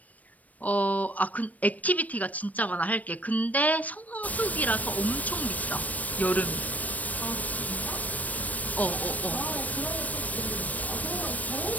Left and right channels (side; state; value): right; late; 0.072 ms